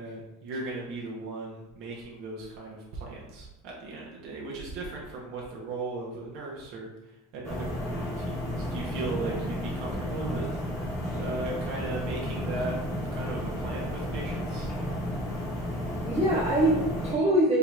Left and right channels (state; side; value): normal; both; correlation 0.44